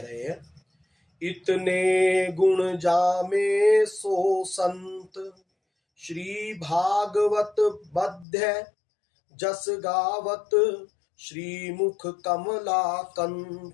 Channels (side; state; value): right; drops out; at 8.2 s